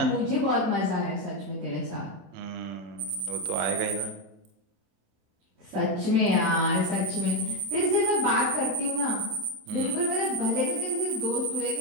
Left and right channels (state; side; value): late; left; 27 ms